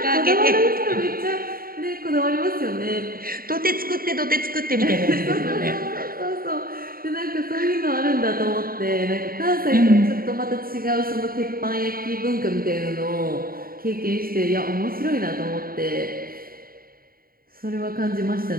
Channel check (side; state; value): left; late; 0.43 ms